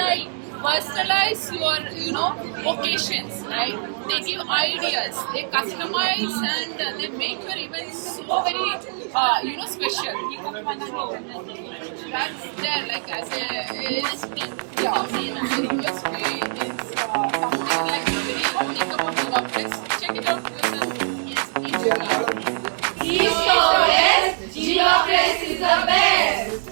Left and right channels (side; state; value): left; silent; digital silence